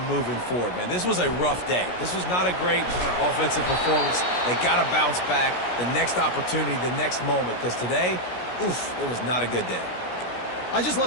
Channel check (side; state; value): right; late; 17 ms